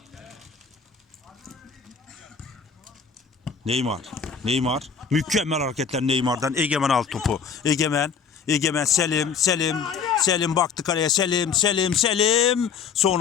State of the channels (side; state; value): right; quieter; 6.4 dB